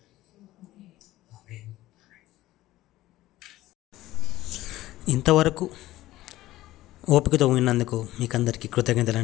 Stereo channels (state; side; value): quieter; right; 16.2 dB